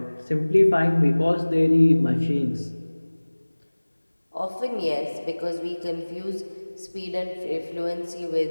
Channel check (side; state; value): both; inverted; correlation -1.00